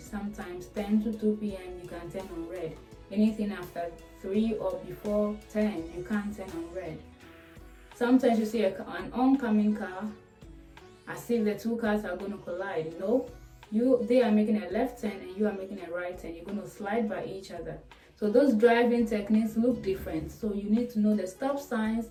Sometimes 10 to 2 p.m. you can turn on red. Anything after 3 or before 10, you can't turn on red. Sometimes you see an oncoming car, as if the two cars are going to collide. No, they are making a left turn and you are making a right turn. You're going to slide by each other. So those driving techniques look different. So you need to know the stop signs,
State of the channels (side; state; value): both; identical; correlation 1.00